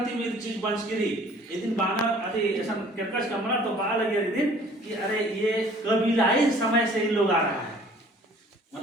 मेरी चीज बंचगिरी एक दिन बाना अरे ऐसा कर्कश कमरा तो बा लगे एक दिन कि अरे ये कबीलाई समय से इन लोग आ रहा है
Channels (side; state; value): both; normal; correlation 0.53